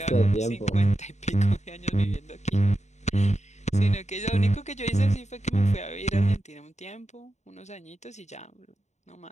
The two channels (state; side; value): late; right; 0.33 ms